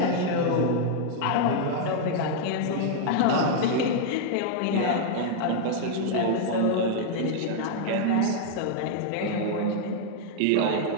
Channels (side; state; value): both; different; correlation -0.01